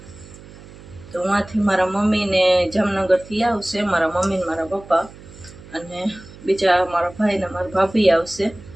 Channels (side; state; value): right; noise; hum, 19 dB below the sound